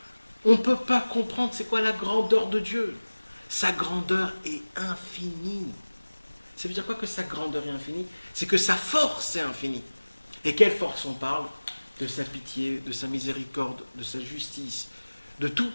On ne peut pas comprendre c'est quoi la grandeur de Dieu. Sa grandeur est infinie. Ça veut dire quoi que sa grandeur est infinie? C'est que sa force est infinie. Et quelle force on parle? De sa pitié, de sa miséricorde, de sa justice, de tout.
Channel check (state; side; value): inverted; both; correlation -1.00